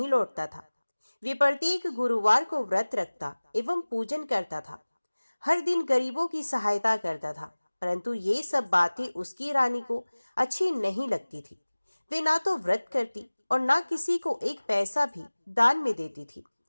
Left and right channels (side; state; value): both; inverted; correlation -1.00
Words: लौटता था। वे प्रत्येक गुरुवार को व्रत रखता एवं पूजन करता था। हर दिन गरीबों की सहायता करता था। परंतु ये सब बातें उसकी रानी को अच्छी नहीं लगती थी। वे ना तो व्रत करती और ना किसी को एक पैसा भी दान में देती थी।